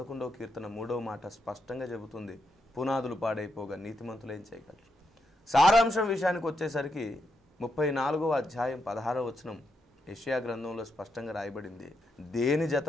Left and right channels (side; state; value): both; normal; correlation 0.82